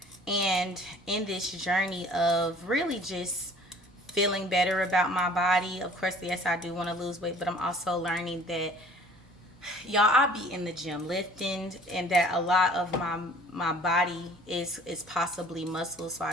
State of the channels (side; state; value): both; normal; correlation 0.51